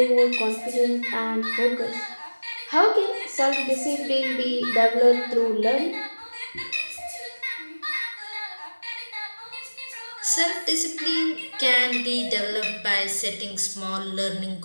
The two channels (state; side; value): inverted; both; correlation -1.00